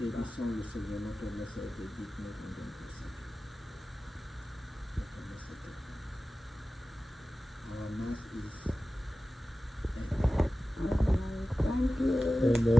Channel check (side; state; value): both; normal; correlation 0.96